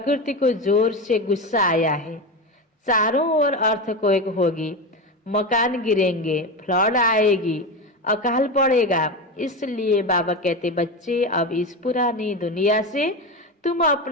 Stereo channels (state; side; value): normal; both; correlation 0.20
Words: को जोर से गुस्सा आया है। चारों ओर अर्थक्वेक होगी, मकान गिरेंगे, फ्लड आएगी, अकाल पड़ेगा। इसलिए बाबा कहते, बच्चे अब इस पुरानी दुनिया से तुम